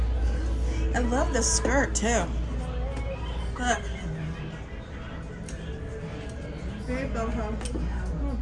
I love this skirt too. Look. Very boho. Oh,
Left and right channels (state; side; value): identical; both; correlation 1.00